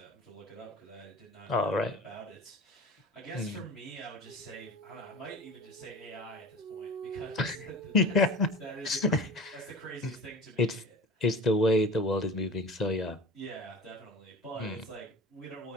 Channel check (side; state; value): both; normal; correlation 0.37